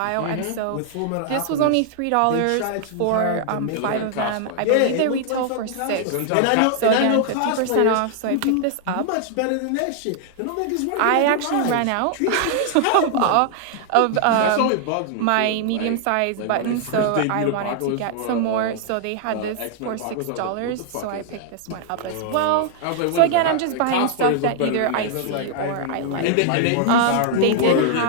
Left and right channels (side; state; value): both; different; correlation 0.00